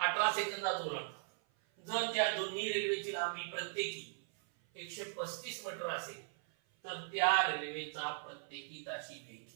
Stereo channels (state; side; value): silent; left; 52 dB below the other